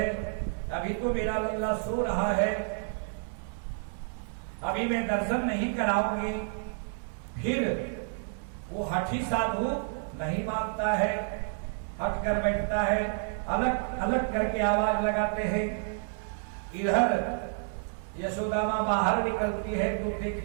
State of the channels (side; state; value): left; silent; 58 dB below the other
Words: अभी तो मेरा लल्ला सो रहा है, अभी मैं दर्शन नहीं कराऊंगी। फिर वो हठी साधु नहीं मानता है, हट कर बैठता है, अलग अलग करके आवाज लगाते हैं। इधर यशोदा मां बाहर निकलती है तो